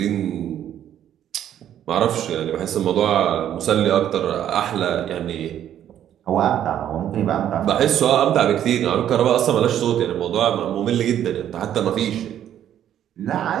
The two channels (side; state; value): left; quieter; 10.7 dB